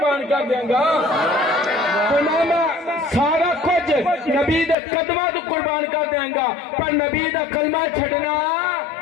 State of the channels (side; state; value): right; drops out; at 4.8 s